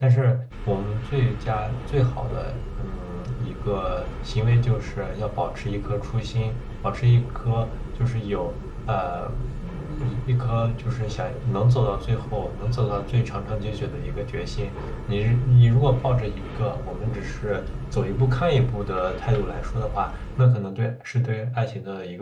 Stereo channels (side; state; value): both; identical; correlation 1.00